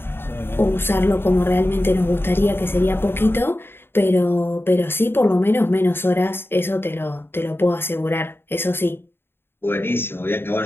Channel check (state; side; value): late; right; 0.11 ms